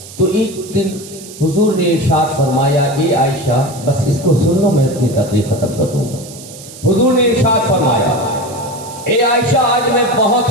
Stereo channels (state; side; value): noise; right; hiss, 16 dB below the sound